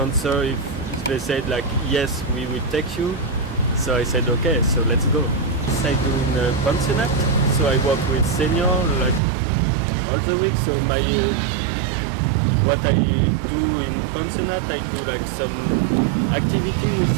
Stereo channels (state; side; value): drops out; left; at 9.2 s